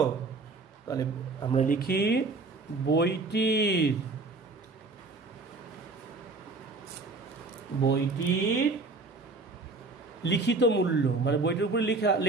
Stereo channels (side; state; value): left; quieter; 3.6 dB